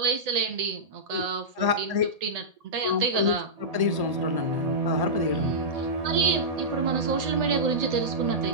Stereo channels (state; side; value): late; left; 1.8 ms